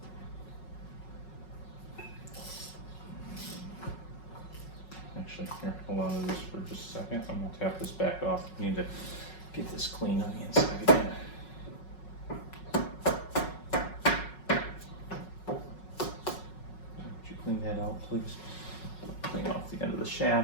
Actually, here, hold on to this for just a second. I'm gonna tap this back off. We need to get this clean on the inside again. Would you clean that out, please? Clean off the end of the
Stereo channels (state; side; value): late; right; 5.4 ms